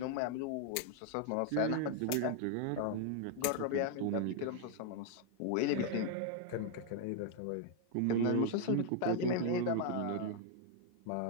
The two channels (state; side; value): different; both; correlation 0.00